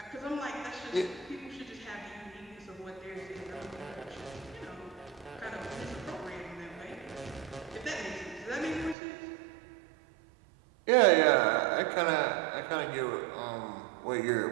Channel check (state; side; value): drops out; left; at 9.0 s